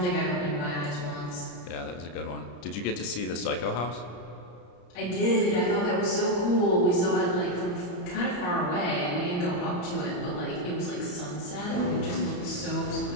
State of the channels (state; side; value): late; right; 34 ms